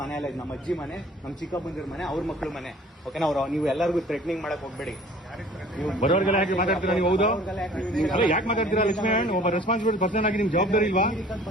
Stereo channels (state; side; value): normal; both; correlation 0.50